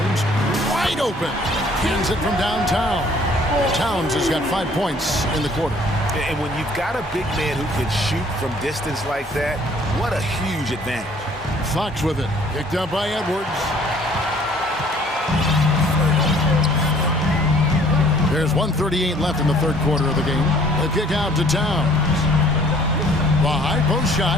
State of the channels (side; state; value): both; normal; correlation 0.57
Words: wide open. Hands it from downtown. Towns has got 5 points in the quarter. And when you've got a big man who can shoot from distance like that, what a huge advantage. Fox with it. Picked up by Edwards. There's 1:38 left in the 3rd quarter of the game. The kick out to Towns. The high post shot,